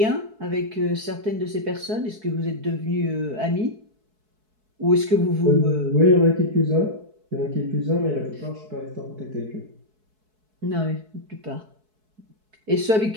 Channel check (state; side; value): late; left; 4.6 ms